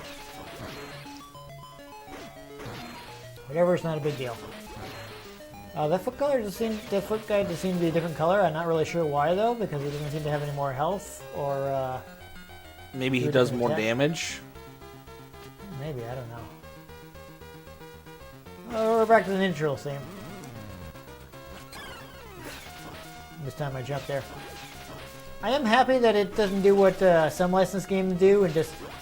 Whatever, it's not a big deal. That foot guy just seemed to be a different color. I'm not really sure why though, because he doesn't seem to have any more health, or Maybe do he a does different more attack. damage. Maybe, I don't know. We're back to the Ninja Turtle theme. This time I jumped there. I am happy that it doesn't do what some licensed games do and just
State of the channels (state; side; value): identical; both; correlation 1.00